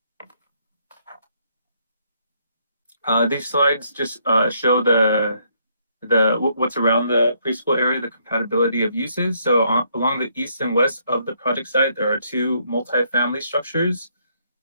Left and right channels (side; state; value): both; inverted; correlation -0.71